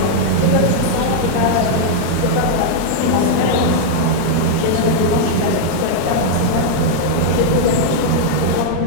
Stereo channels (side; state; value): both; different; correlation -0.01